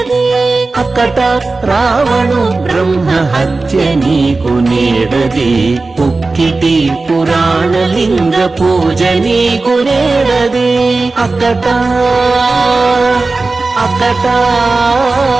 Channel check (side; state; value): left; quieter; 3.6 dB